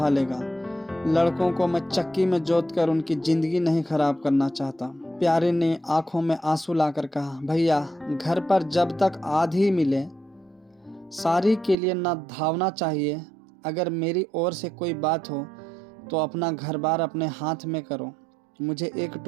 लड़कों को मैं चक्की में जोत कर उनकी जिंदगी नहीं खराब करना चाहता। प्यारे ने आंखों में आंसू लाकर कहा, भैया घर पर जब तक आधी मिले सारी के लिए ना धावना चाहिए। अगर मेरी ओर से कोई बात हो तो अपना घर बार अपने हाथ में करो, मुझे एक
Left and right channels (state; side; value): drops out; left; at 11.8 s